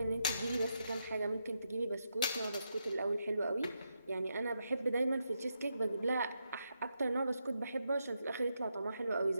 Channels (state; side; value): inverted; both; correlation -0.83